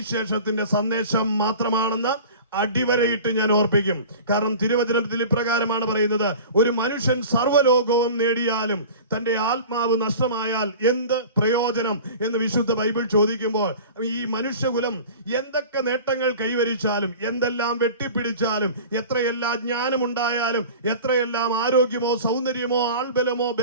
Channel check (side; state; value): both; inverted; correlation -0.38